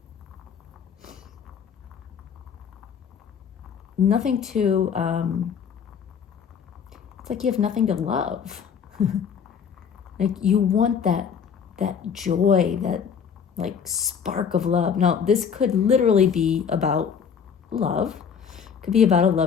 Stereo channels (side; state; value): right; quieter; 7.1 dB